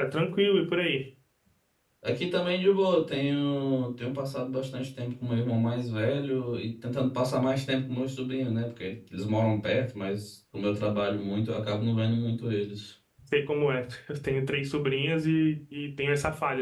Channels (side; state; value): both; identical; correlation 1.00